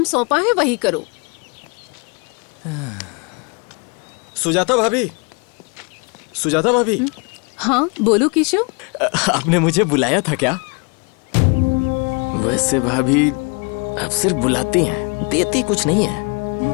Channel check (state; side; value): quieter; right; 33.4 dB